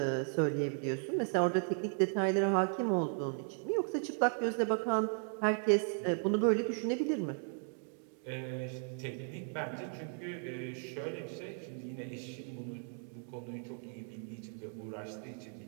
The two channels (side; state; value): left; silent; 54 dB below the other